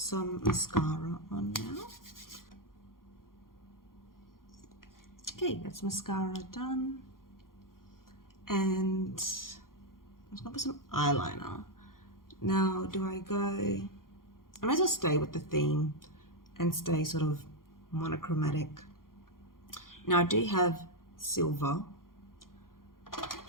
mascara on now. Okay, that's mascara done. And I'm just gonna put some eyeliner. Now, do I go, I might as well stay with the theme and stay sort of monochromatic. Now I do have silver,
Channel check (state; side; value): late; right; 0.91 ms